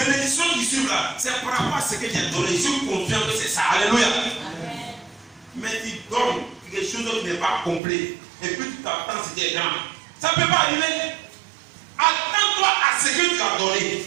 bénédictions qui suivent là, c'est par rapport à ce que j'ai donné. Je suis confiant que c'est ça. Alléluia. Amen. Mais tu donnes quelque chose qui n'est pas complet. Et puis tu t'attends ce qui est grand. Ça ne peut pas arriver. Attends-toi à ce que tu as donné.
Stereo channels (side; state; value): left; drops out; at 7.8 s